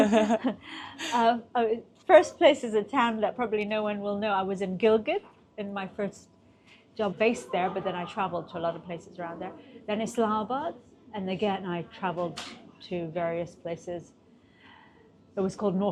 So, first place is a town that probably no one will know. I was in Gilgit in my first job based there, but then I traveled to a lot of places around there. Then Islamabad, and again I traveled to various places. It was called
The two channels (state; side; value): identical; both; correlation 1.00